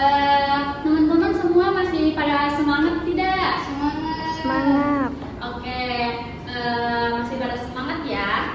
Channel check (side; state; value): both; identical; correlation 1.00